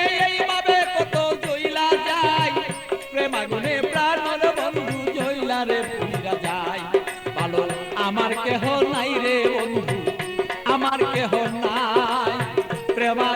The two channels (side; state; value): both; identical; correlation 1.00